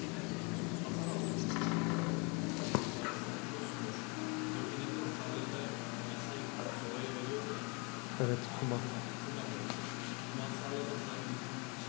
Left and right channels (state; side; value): quieter; right; 31.1 dB